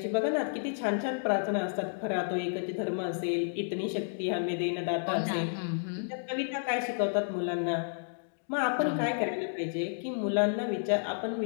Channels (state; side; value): silent; right; digital silence